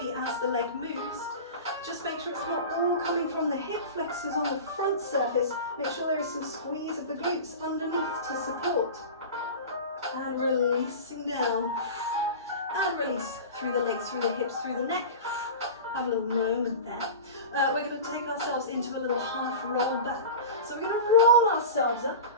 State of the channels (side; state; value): both; inverted; correlation -0.31